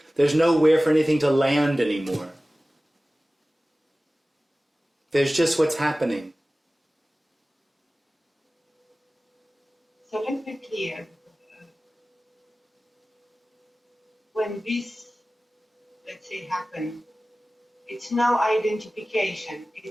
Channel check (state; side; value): normal; both; correlation 0.97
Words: There's nowhere for anything to land anymore. There's just what's happening. So let's be clear. When this, let's say, happens, it's no identification.